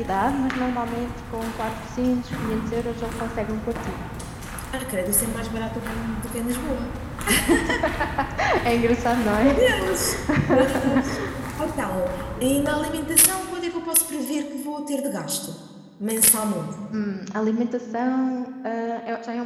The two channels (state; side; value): identical; both; correlation 1.00